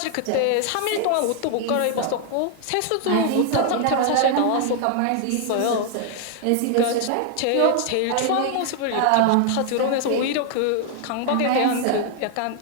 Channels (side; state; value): both; different; correlation 0.00